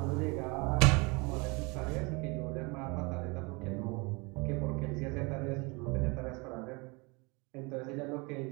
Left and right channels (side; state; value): left; quieter; 28.2 dB